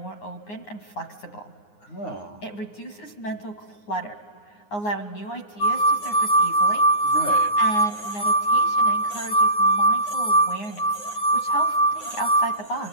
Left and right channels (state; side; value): late; right; 9.6 ms